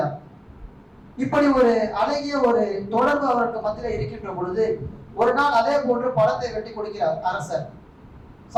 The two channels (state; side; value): identical; both; correlation 1.00